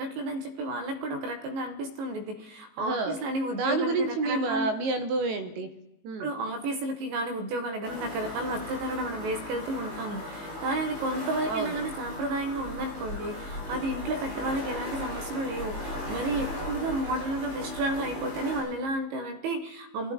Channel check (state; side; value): late; left; 19 ms